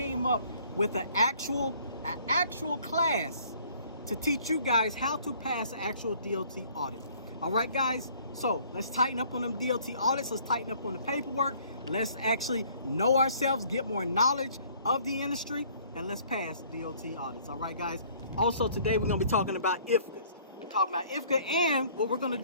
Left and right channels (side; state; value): both; inverted; correlation -0.57